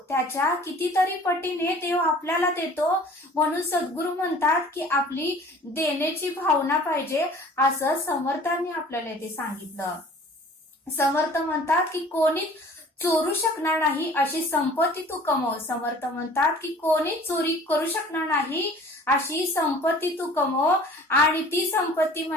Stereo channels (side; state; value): both; normal; correlation 0.48